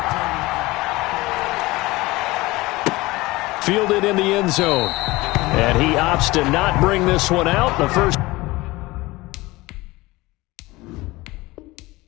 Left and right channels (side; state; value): right; quieter; 20.6 dB